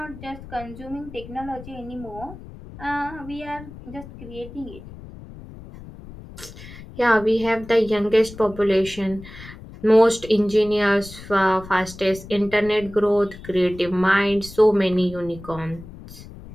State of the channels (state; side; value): noise; left; rumble, 16 dB below the sound